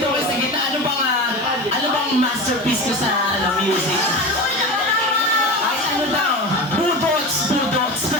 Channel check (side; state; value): left; noise; hiss, 25 dB below the sound